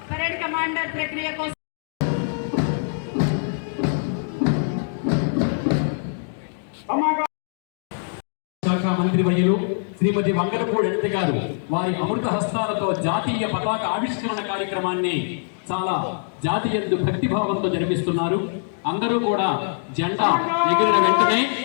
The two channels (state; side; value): silent; right; digital silence